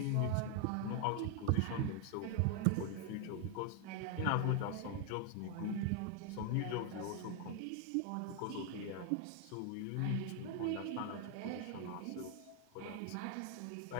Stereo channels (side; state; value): both; different; correlation 0.01